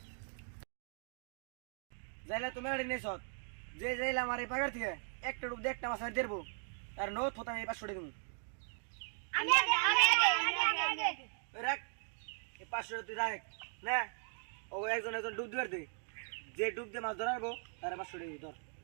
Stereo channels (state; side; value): silent; left; 52 dB below the other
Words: যাইলে তুমি আড়ি নেছ যে যাইলে আমার এই পাগার থেকে একটা ডুব দিয়ে একটা মাছ আর দেবো তার নো থতা আমি এবার ছড়ে দেবো রাখ এই 500 তুই রাখ না ও একজন একজন ডুব দিবার দে যে ডুব দিয়ে মাছ ধরাবো তার 500 দিবি ধর